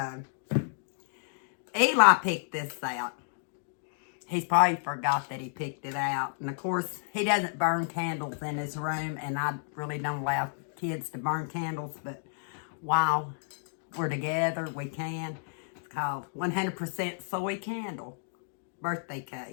Eli picked this out. He's probably forgot that he picked it out. And of course, he doesn't burn candles in his room, and I really don't allow kids to burn candles, but while we're together, we can. It's called 100% Soy Candle. birthday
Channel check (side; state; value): right; silent; digital silence